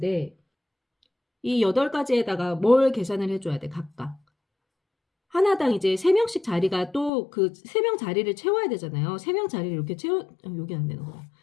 이 8가지에다가 뭘 계산을 해줘야 돼, 각각. 하나당 이제 3명씩 자리가 또 그 3명 자리를 채워야 되잖아요. 3명 자리를 이렇게 여기 안 되는 거야.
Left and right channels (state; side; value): drops out; right; at 7.1 s